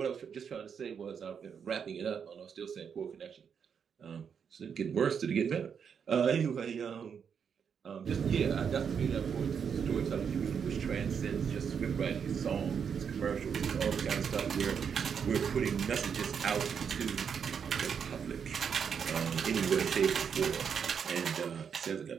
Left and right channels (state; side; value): quieter; left; 7.0 dB